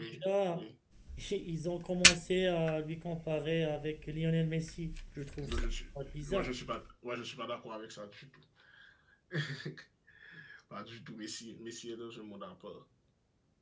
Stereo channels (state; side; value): identical; both; correlation 1.00